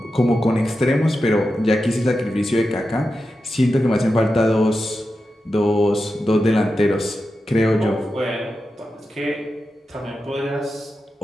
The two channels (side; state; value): both; normal; correlation 0.90